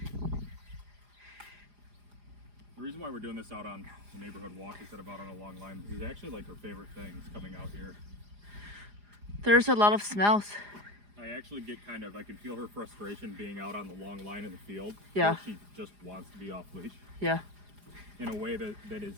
The reason why we're doing this out on the neighborhood walk instead of out on a long line is actually like her favorite thing is coming out here. There's a lot of smells. I actually get I can feel her frustration being out on the long line in the field. Yeah. Where she just wants to be off leash Yeah. in a way that is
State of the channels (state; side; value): late; left; 4.9 ms